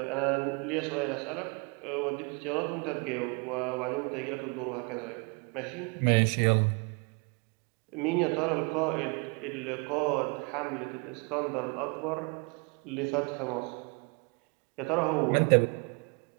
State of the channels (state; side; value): quieter; left; 32.6 dB